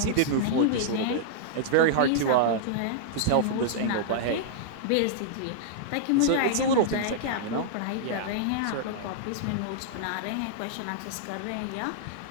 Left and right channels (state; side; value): different; both; correlation -0.01